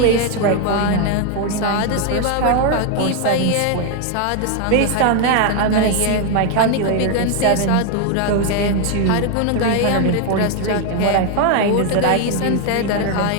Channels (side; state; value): both; different; correlation 0.00